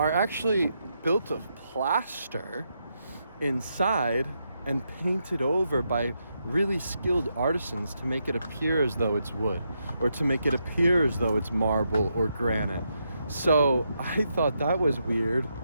actually built of plaster inside and painted over by really skilled artisans to make it appear as though it's wood, or to make it appear as though it's marble or granite. So I thought that was weird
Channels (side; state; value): both; inverted; correlation -0.81